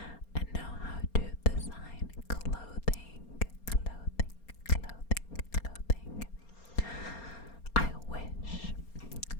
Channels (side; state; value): right; late; 4.3 ms